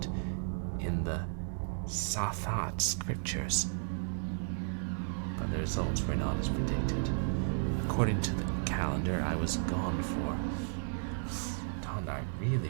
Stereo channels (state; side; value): silent; left; digital silence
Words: in the Sathat scriptures. But the results were not as predicted. According to the calendar, I was gone for... Don't I